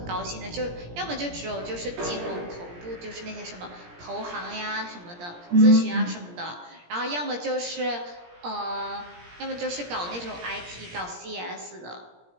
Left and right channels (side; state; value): left; late; 17 ms